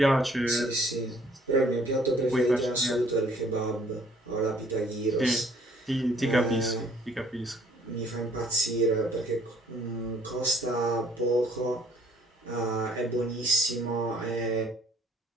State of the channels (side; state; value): both; normal; correlation 0.60